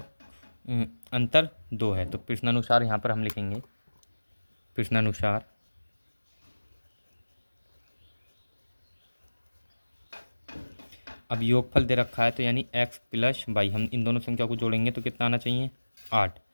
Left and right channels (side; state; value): both; inverted; correlation -1.00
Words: अंतर 2 है। तो प्रश्नानुसार यहाँ पर हम लिखेंगे, प्रश्नानुसार अब योगफल दे रखा है, तो यानी x + y, हम इन दोनों संख्या को जोड़ेंगे तो कितना आना चाहिए 8,